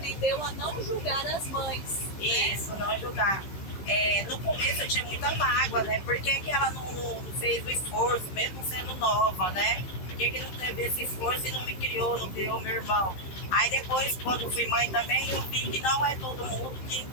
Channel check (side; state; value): right; late; 15 ms